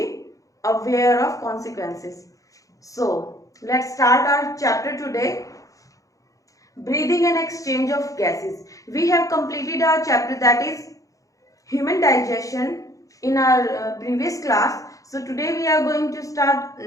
aware of consequences. So let's start our chapter today. Breathing and exchange of gases. We have completed our chapter that is human digestion in our previous class. So today we are going to start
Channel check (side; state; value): right; late; 0.16 ms